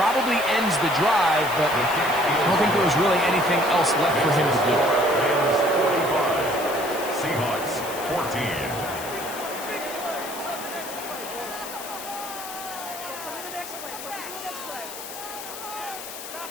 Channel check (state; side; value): noise; left; hiss, 11 dB below the sound